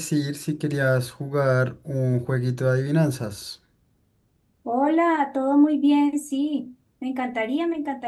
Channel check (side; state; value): both; identical; correlation 1.00